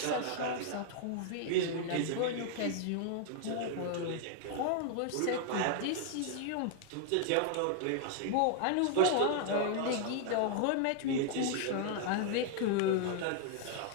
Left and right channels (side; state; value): both; different; correlation 0.00